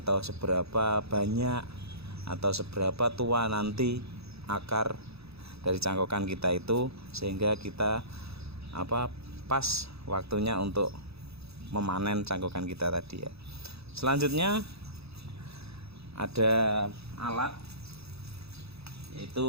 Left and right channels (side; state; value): left; late; 0.78 ms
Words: seberapa banyak atau seberapa tua nanti akar dari cangkokan kita itu, sehingga kita pas waktunya untuk memanen cangkokan kita tadi ya. Selanjutnya ada alat